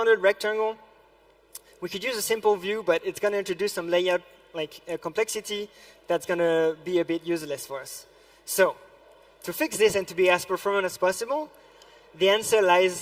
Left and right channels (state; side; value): identical; both; correlation 1.00